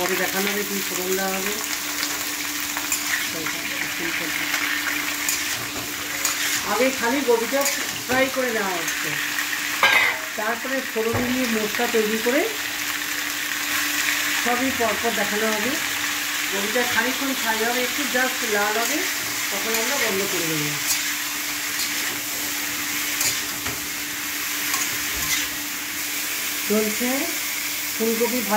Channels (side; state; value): both; identical; correlation 1.00